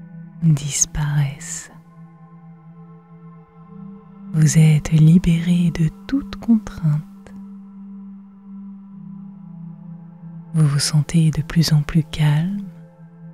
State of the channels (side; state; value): both; identical; correlation 1.00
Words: disparaissent. Vous êtes libéré de toute contrainte. Vous vous sentez de plus en plus calme,